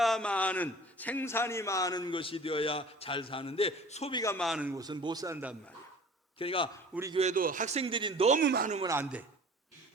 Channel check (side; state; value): both; normal; correlation 0.45